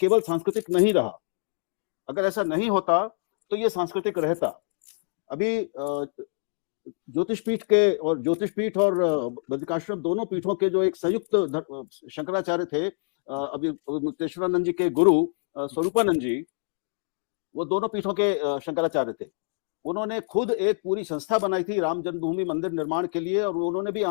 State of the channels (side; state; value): right; silent; digital silence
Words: सांस्कृतिक नहीं रहा। अगर ऐसा नहीं होता तो ये सांस्कृतिक रहता। अभी ज्योतिषपीठ और बद्रिकाश्रम, दोनों पीठों के जो एक संयुक्त शंकराचार्य थे, अभी मुक्तेश्वरानंद जी के गुरु स्वरूपानंद जी, वो दोनों पीठों के शंकराचार्य थे। उन्होंने खुद एक पूरी संस्था बनाई थी राम जन्मभूमि मंदिर निर्माण के लिए, और उन्होंने भी